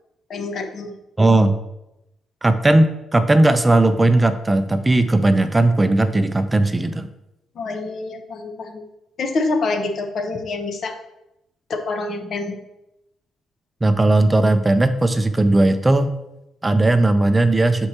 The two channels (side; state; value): both; normal; correlation 0.94